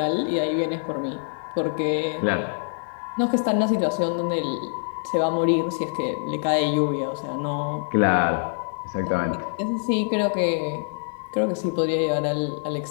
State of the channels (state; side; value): silent; right; digital silence